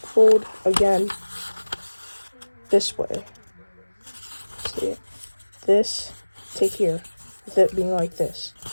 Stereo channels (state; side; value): inverted; both; correlation -1.00